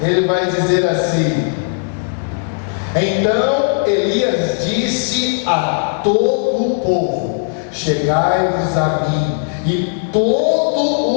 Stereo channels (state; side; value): silent; right; 68 dB below the other